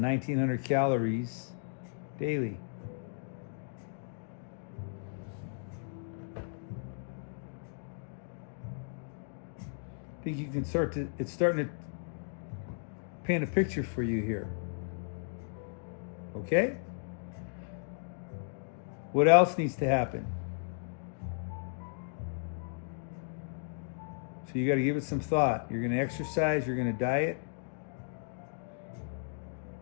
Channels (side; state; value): right; silent; digital silence